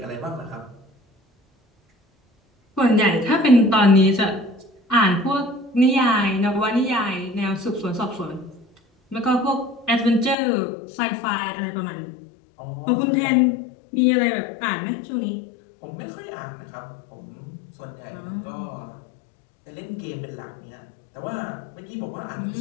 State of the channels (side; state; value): right; drops out; at 10.4 s